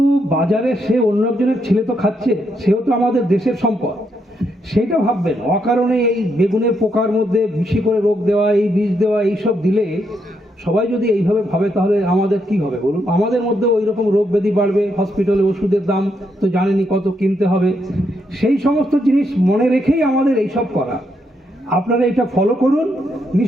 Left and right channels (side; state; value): both; normal; correlation 0.78